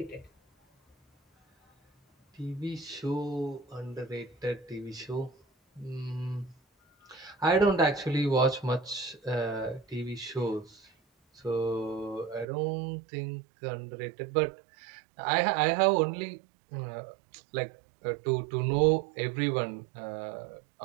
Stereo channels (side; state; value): left; drops out; at 12.5 s